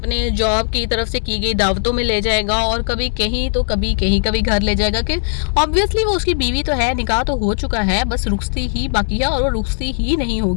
जॉब की तरफ से की गई दावतों में ले जाएगा, और कभी कहीं तो कभी कहीं, कभी घर ले जाएगा। कि ऑब्वियसली वो उसकी बीवी तो है, निकाह तो हो चुका है, बस रुखसती ही बाकी है और वो रुखसती ही नहीं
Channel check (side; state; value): right; silent; digital silence